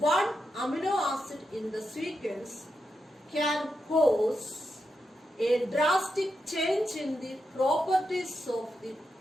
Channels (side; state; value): both; normal; correlation 0.86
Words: one amino acid in the sequence can cause a drastic change in the properties of the